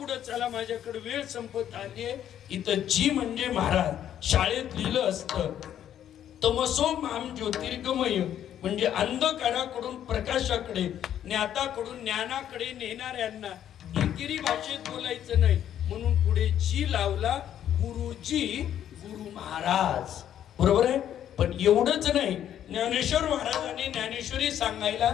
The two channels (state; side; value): quieter; right; 10.5 dB